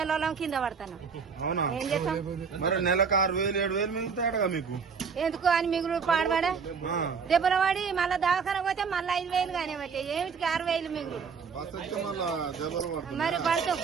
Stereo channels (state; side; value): quieter; left; 5.9 dB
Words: కింద పడతాను. ఏం చేస్తాం మరి? నెలకు 6,000 7,000 మిగులుతాడుగా మీకు. ఎందుకు అని మిగులు పాడబడా దెబ్బల వాడి మళ్ళా దవాఖాన పోతే మళ్ళీ 5,000 కానీ బట్టి ఏమిటికి 6,000 మిగులు. మరి పడితే